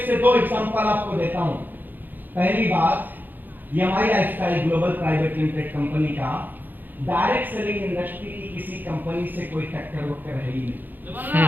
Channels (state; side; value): late; left; 0.088 ms